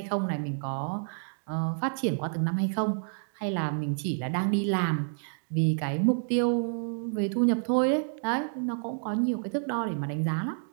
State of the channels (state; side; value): silent; left; digital silence